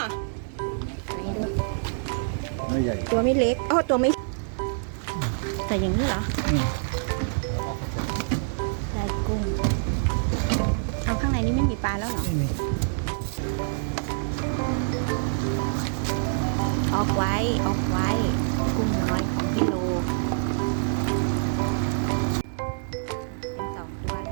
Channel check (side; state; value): left; silent; digital silence